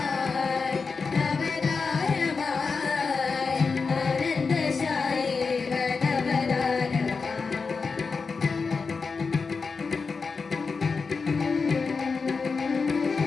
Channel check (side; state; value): right; quieter; 4.8 dB